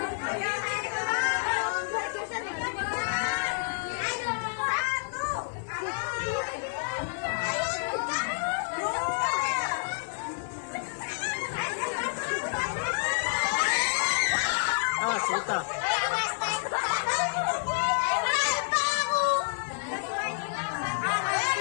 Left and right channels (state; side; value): silent; right; 56 dB below the other